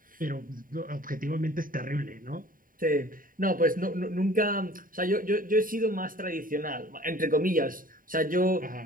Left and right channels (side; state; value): left; late; 0.41 ms